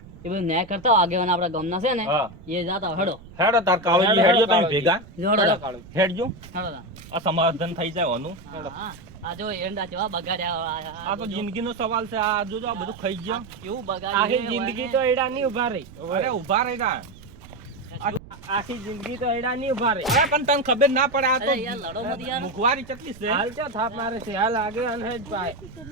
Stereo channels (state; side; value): noise; right; rumble, 19 dB below the sound